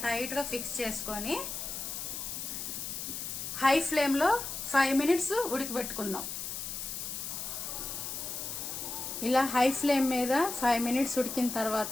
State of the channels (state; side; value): noise; left; hiss, 5 dB below the sound